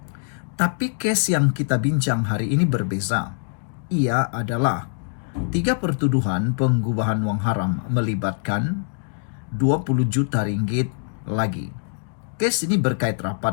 Tapi kes yang kita bincang hari ini berbeza. Ia adalah 3 pertuduhan pengubahan wang haram melibatkan 20 juta ringgit lagi. Kes ini berkait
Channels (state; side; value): silent; right; digital silence